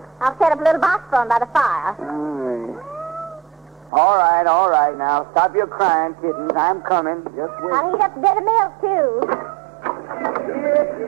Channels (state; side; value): drops out; left; at 3.9 s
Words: I'll set up a little box for 'em by the fire. All right. Now, stop your crying, kittens. I'm coming. Just wait. I'll heat up a bit of milk, too.